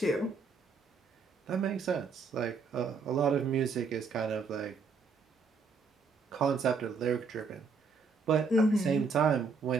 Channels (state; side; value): quieter; left; 4.7 dB